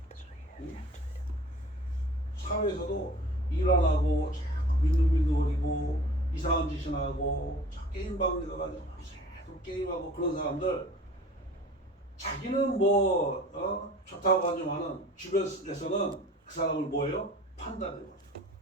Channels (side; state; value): both; normal; correlation 0.45